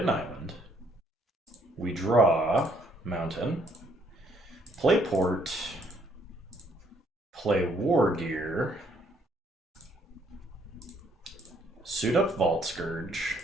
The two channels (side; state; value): both; normal; correlation 0.67